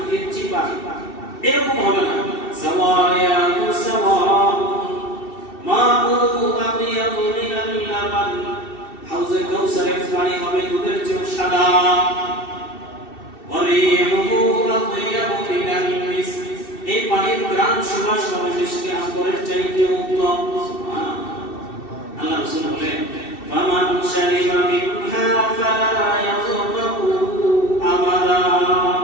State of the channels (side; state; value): right; late; 2.7 ms